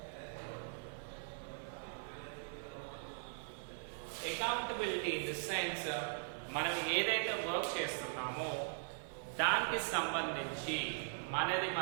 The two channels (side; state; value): left; silent; 51 dB below the other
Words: Accountability in the sense మనం ఏదైతే వర్క్ చేస్తున్నామో దానికి సంబంధించి